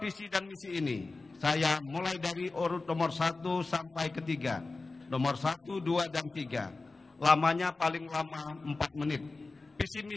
dan misi ini saya mulai dari urut nomor 1 sampai ke 3. Nomor 1, 2, dan 3. Lamanya paling lama 4 menit. Visi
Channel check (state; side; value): quieter; right; 3.6 dB